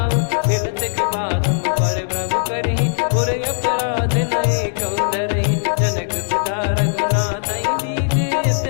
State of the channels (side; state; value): right; silent; digital silence